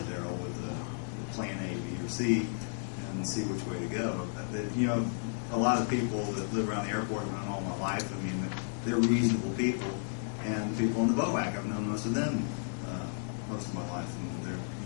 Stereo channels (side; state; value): right; silent; digital silence